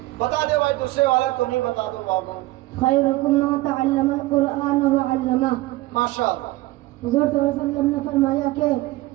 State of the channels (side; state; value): left; quieter; 18.8 dB